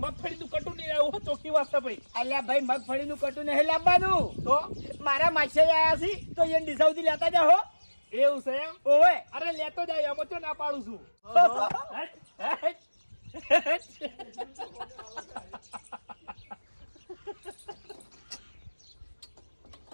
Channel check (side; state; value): both; inverted; correlation -1.00